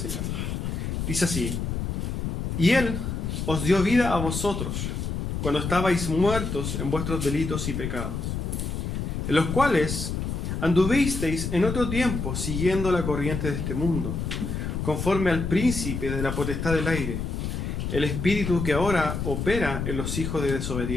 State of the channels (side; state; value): left; noise; rumble, 3 dB below the sound